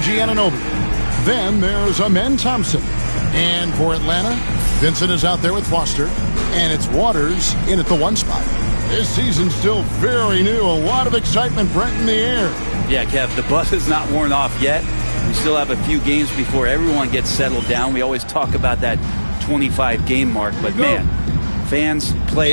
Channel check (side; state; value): both; inverted; correlation -1.00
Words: Then there's Amen Thompson. And for Atlanta, Vincent is out there with Foster. And it's Waters in at the 1 spot. This season's still very new. A lot of excitement, Brent, in the air. Yeah, Kev, the buzz is not worn off yet. We still have a few games before everyone gets settled down. We always talk about that 25-game mark. But, man, fans,